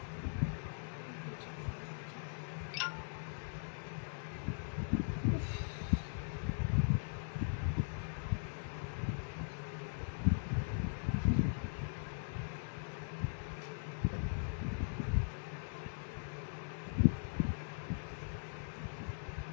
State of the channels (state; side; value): silent; right; digital silence